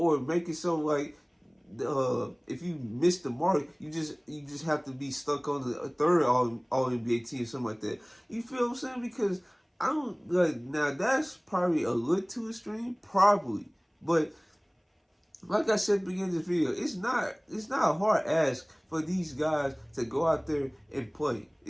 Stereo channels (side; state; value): both; identical; correlation 1.00